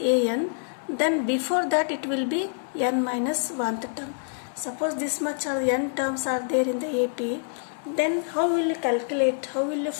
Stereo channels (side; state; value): right; silent; digital silence